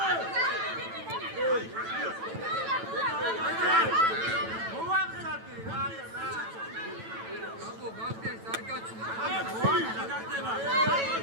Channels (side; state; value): left; late; 9.0 ms